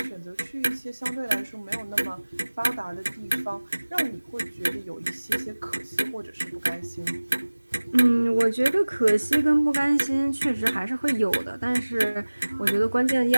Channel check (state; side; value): inverted; both; correlation -1.00